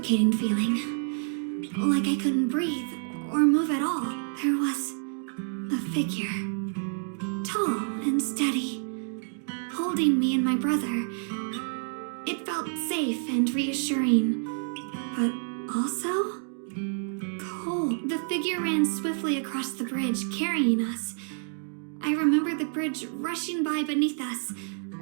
feeling. Like I couldn't breathe or move at all. There was a figure. Tall and steady. Holding me and my brother. It felt safe and reassuring. but also cold. The figure ran swiftly across the bridge, carrying us. I remember the bridge rushing by beneath us,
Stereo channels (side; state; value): left; silent; 59 dB below the other